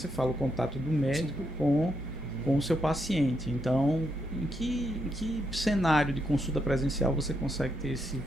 fala o contato do médico com o seu paciente. Então, em que cenário de consulta presencial você consegue ter esse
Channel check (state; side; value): normal; both; correlation 0.80